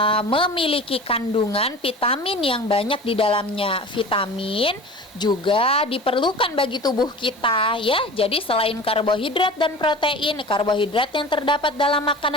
memiliki kandungan vitamin yang banyak di dalamnya. Vitamin juga diperlukan bagi tubuh kita ya. Jadi selain karbohidrat dan protein, karbohidrat yang terdapat dalam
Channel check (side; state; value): both; normal; correlation 0.37